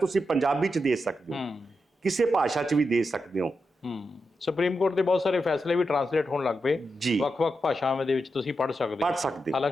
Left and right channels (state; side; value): normal; both; correlation 0.87